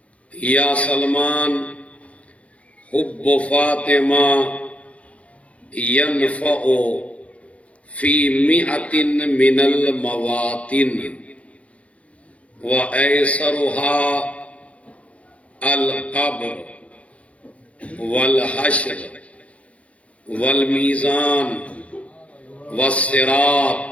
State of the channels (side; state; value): right; late; 0.064 ms